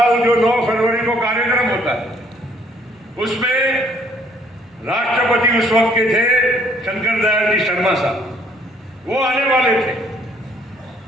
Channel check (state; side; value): normal; both; correlation 0.63